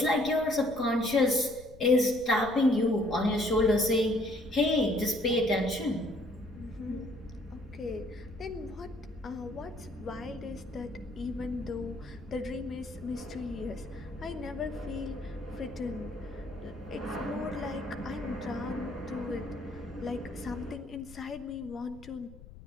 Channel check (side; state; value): left; noise; rumble, 18 dB below the sound